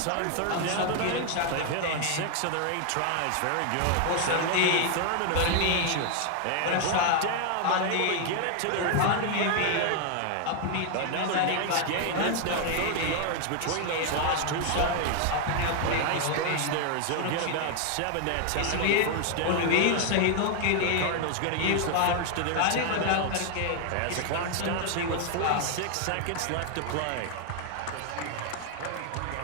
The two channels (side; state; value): both; different; correlation 0.00